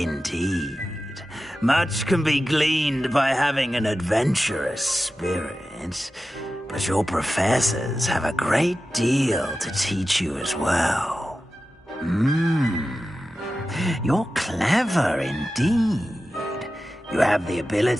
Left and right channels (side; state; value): both; normal; correlation 0.93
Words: Much can be gleaned by having an adventurous spirit, but your professors have a great deal to teach you as well. You're clever indeed. You have the